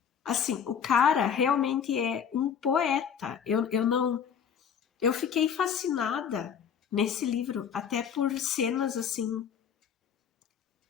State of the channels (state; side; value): quieter; right; 7.7 dB